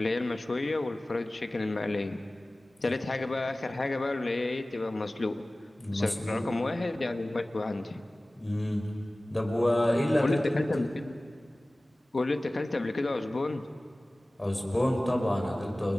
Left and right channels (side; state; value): both; normal; correlation 0.98